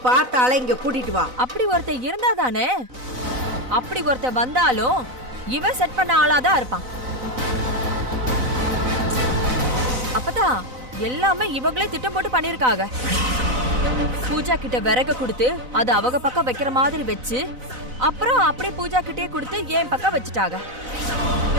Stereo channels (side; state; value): left; late; 4.0 ms